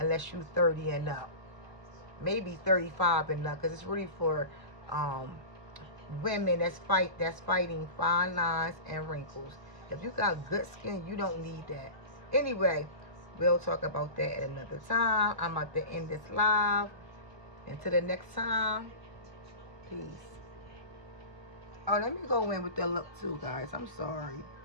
you're 30 and up. Maybe 35 and up, because it's really for women that's fighting fine lines and wrinkles. If you got good skin, you don't need that. Anyway, we'll talk about that at another time. I'm about to end this live. Until the next time, peace. Oh, let me go in with the look too, guys. I'm sorry.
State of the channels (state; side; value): late; left; 1.0 ms